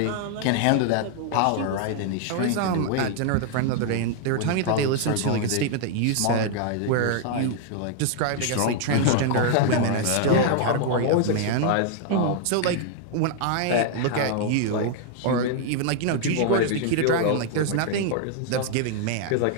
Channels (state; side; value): different; both; correlation 0.00